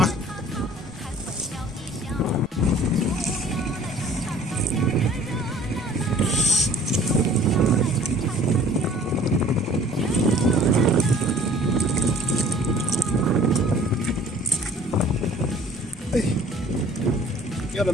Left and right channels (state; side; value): normal; both; correlation 0.52